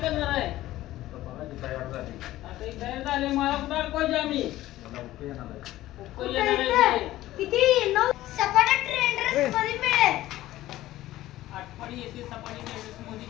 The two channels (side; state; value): right; quieter; 15.4 dB